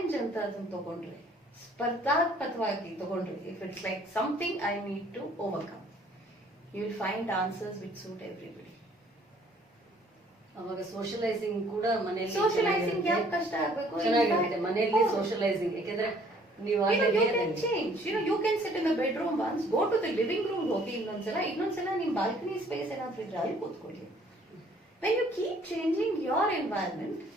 ಅಂತ ಅದನ್ನ ತಗೊಂಡ್ರೆ, ಸ್ಪರ್ಧಾತ್ಮಕವಾಗಿ ತಗೊಂಡ್ರೆ, if it's like something I need to overcome, you will find answers which suit everybody. ಅವಾಗ ಸೋಷಲೈಸಿಂಗ್ ಕೂಡ ಮನೆಯಲ್ಲಿ ಸೋಷಲೈಸಿಂಗ್ ಯಾಕೆ ಕಷ್ಟ ಆಗ್ಬೇಕು? ಚೆನ್ನಾಗಿರುತ್ತೆ ಮನೆಯಲ್ಲಿ ಸೋಷಲೈಸಿಂಗ್. ಯಾಕಂದ್ರೆ ನೀವು you can change. You can sit in the bedroom once, go to the living room, ಹೋಗಿ ಇನ್ನೊಂದ್ಸಲ ನಿಮ್ ಬಾಲ್ಕನಿ ಸ್ಪೇಸ್ ಏನಾದ್ರೂ ಇದ್ರೆ ಅಲ್ಲಿ ಕೂತ್ಕೊಳ್ಳಿ. When you keep changing your environment,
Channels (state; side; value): normal; both; correlation 0.59